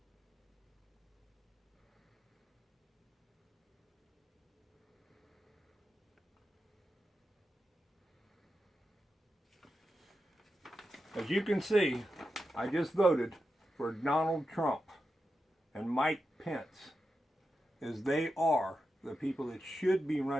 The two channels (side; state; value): both; normal; correlation 0.89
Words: As you can see, I just voted for Donald Trump and Mike Pence is they are the people that should be